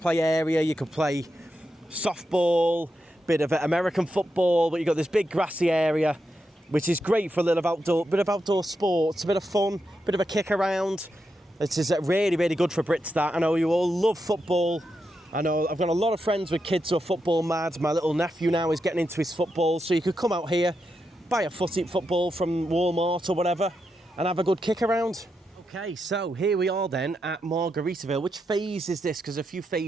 area. You could play softball, bit of American football, but you've got this big grassy area, which is great for a little bit of outdoor sports, a bit of fun, bit of a kick around. This is really good for Brits. That I know you all love football. I know I've got a lot of friends with kids who are football mad. My little nephew now is getting into his football, so you could come out here, buy a football from Walmart or whatever, and have a good kick around. Okay, so here we are then at Margaritaville. Which phase is this? Because a few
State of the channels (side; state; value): both; normal; correlation 0.85